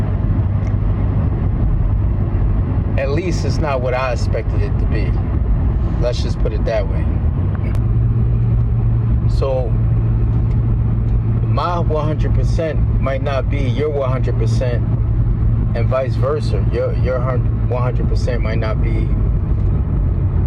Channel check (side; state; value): both; identical; correlation 1.00